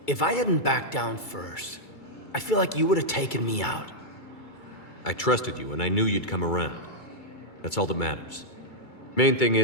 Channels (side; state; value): right; late; 2.3 ms